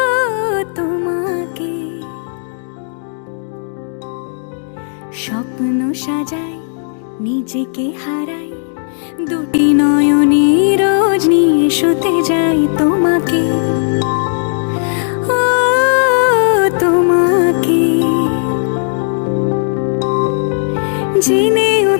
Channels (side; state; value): right; silent; digital silence